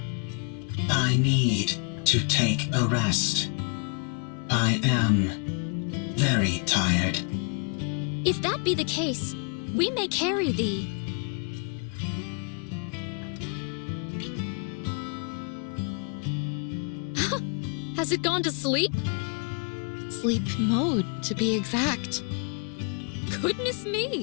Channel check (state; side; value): quieter; right; 39.6 dB